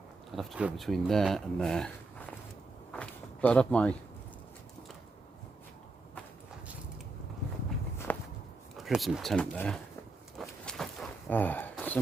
I'd have to go between there and there. But I'd have my prison tent there. Ah,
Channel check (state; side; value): quieter; left; 3.5 dB